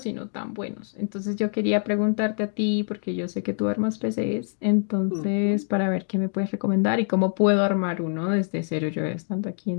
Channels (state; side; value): silent; right; digital silence